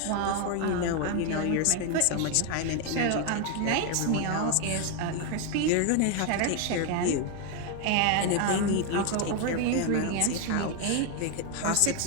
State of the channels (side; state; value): both; different; correlation 0.01